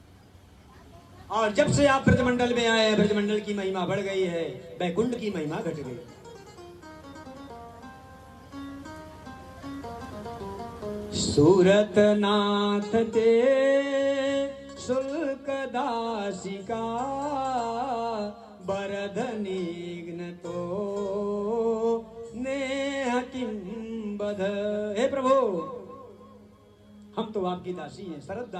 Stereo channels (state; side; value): identical; both; correlation 1.00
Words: और जब से आप ब्रजमंडल में आए, ब्रजमंडल की महिमा बढ़ गई है, बैकुंठ की महिमा घट गई। सूरत नाथ ते शुल्क दासिका बरधनिग्न तो नेह किम बध। हे प्रभु, हम तो आपकी दासी हैं, शरद